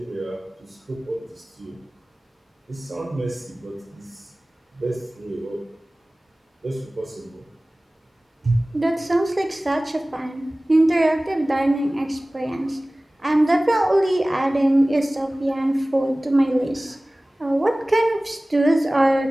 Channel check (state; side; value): normal; both; correlation 0.98